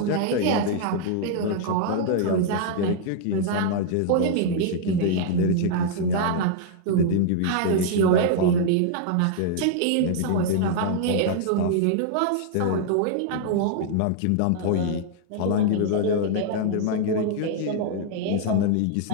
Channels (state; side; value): different; both; correlation -0.01